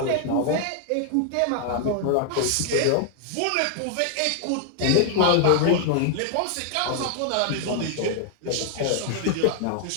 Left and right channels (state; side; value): different; both; correlation 0.00